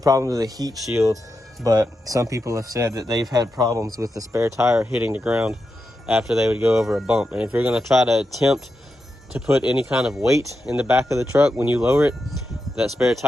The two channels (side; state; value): both; normal; correlation 0.88